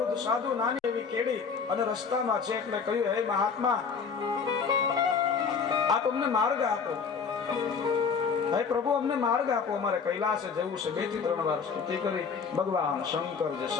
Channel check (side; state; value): right; quieter; 5.8 dB